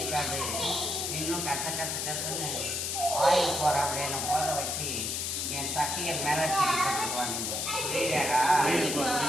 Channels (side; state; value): left; noise; hiss, 1 dB below the sound